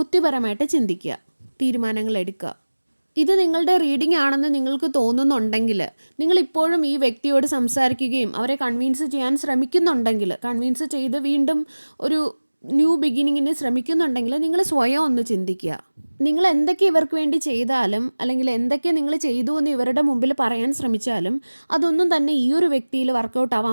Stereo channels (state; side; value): inverted; both; correlation -1.00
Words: ചിന്തിക്കുക, തീരുമാനങ്ങൾ എടുക്കുക. ഇത് നിങ്ങളുടെ റീഡിംഗ് ആണെന്ന് നിങ്ങൾക്ക് തോന്നുന്നുണ്ടെങ്കിൽ, നിങ്ങളിപ്പോഴും ഈ വ്യക്തിയോട് സംസാരിക്കുകയും അവരെ കൺവിൻസ് ചെയ്യാൻ ശ്രമിക്കുന്നുണ്ടെങ്കിൽ, കൺവിൻസ് ചെയ്ത് വീണ്ടും ഒരു ന്യൂ ബിഗിനിങ്ങിന് ശ്രമിക്കുന്നുണ്ടെങ്കിൽ നിങ്ങൾ സ്വയം ഒന്ന് ചിന്തിക്കുക. നിങ്ങൾ എന്തൊക്കെ ഇവർക്ക് വേണ്ടി ചെയ്താലും അല്ലെങ്കിൽ എന്തൊക്കെ നിങ്ങൾ ചെയ്തു എന്ന് ഇവരുടെ മുമ്പിൽ പറയാൻ ശ്രമിച്ചാലും അതൊന്നും തന്നെ ഈ ഒരു വ്യക്തിയിൽ വർക്കൗട്ട്